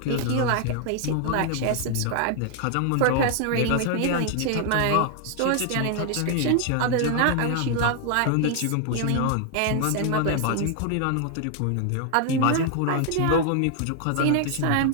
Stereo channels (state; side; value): different; both; correlation 0.00